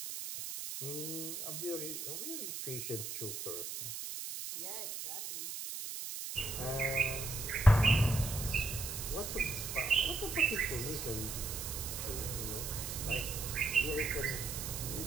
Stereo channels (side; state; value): right; noise; hiss, 6 dB below the sound